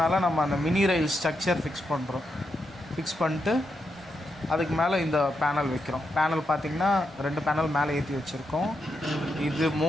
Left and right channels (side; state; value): both; normal; correlation 0.84